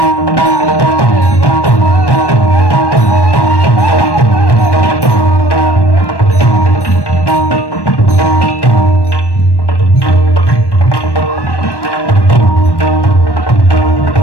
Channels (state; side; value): late; right; 1.1 ms